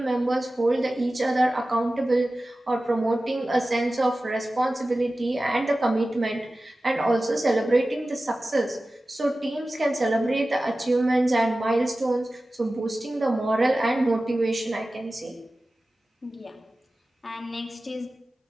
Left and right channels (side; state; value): both; normal; correlation 0.96